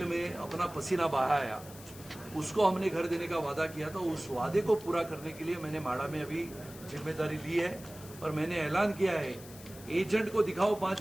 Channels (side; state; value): left; noise; hiss, 18 dB below the sound